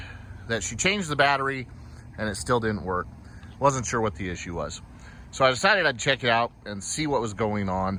that she changed the battery and it still didn't work. Wasn't sure what the issue was. So I decided I'd check it out and see what was going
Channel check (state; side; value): identical; both; correlation 1.00